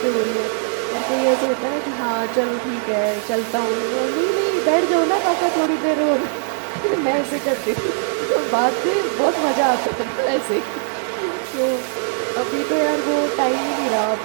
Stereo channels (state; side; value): silent; left; digital silence